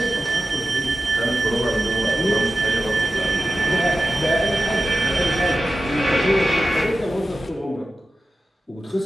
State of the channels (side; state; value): both; normal; correlation 0.93